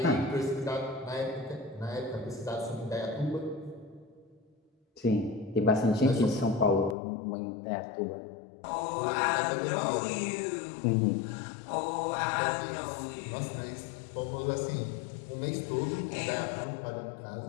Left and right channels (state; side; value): drops out; right; at 7.0 s